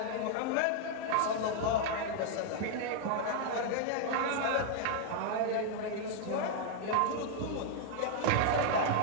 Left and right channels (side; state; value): both; different; correlation 0.00